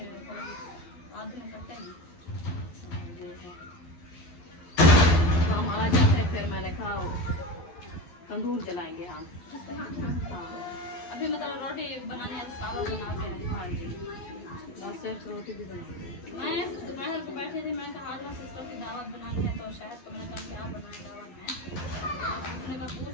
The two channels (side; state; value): right; late; 11 ms